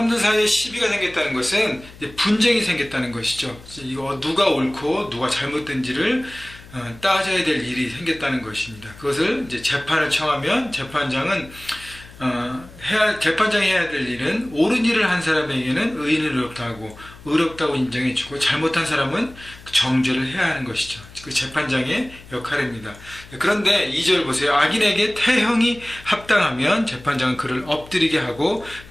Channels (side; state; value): left; noise; hum, 20 dB below the sound